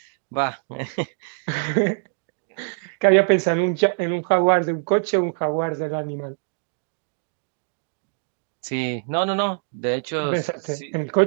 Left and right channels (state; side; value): silent; left; digital silence